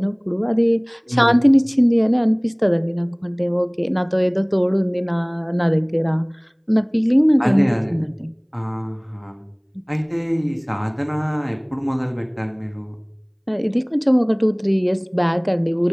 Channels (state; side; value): identical; both; correlation 1.00